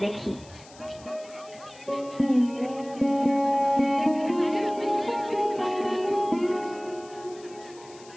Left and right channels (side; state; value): left; noise; hiss, 22 dB below the sound